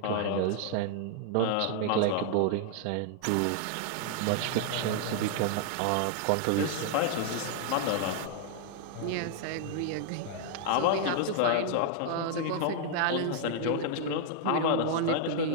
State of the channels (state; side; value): different; both; correlation 0.00